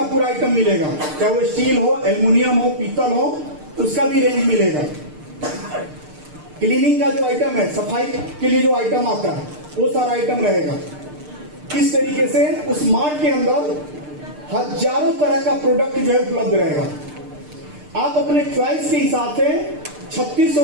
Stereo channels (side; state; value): left; late; 6.7 ms